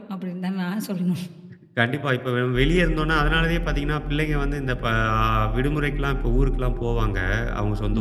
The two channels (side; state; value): both; identical; correlation 1.00